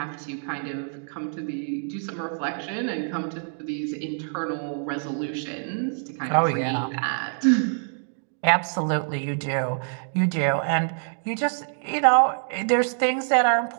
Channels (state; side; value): silent; left; 61 dB below the other